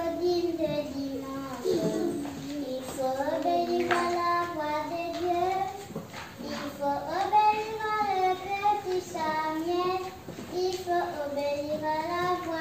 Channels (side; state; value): both; identical; correlation 1.00